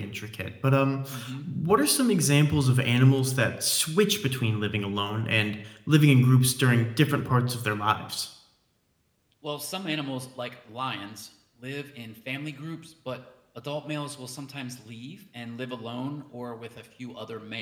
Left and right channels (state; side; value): identical; both; correlation 1.00